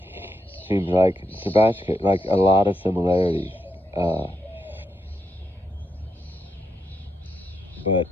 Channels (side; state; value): both; normal; correlation 0.83